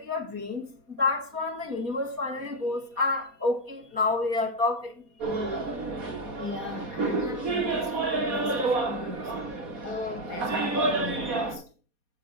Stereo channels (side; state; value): left; late; 4.2 ms